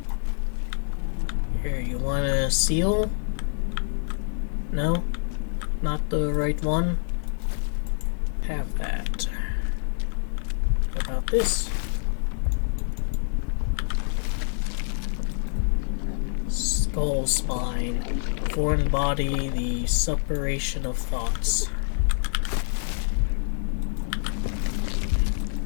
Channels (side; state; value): right; silent; digital silence